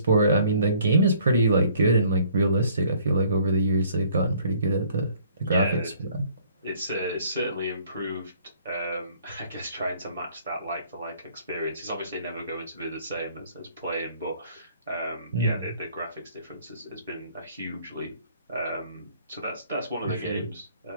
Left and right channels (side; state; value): both; inverted; correlation -0.58